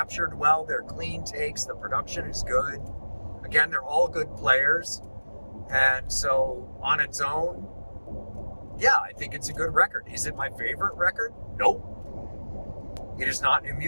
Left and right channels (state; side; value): inverted; both; correlation -1.00